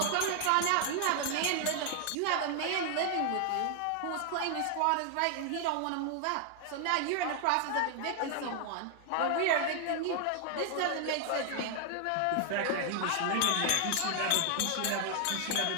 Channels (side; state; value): both; different; correlation 0.00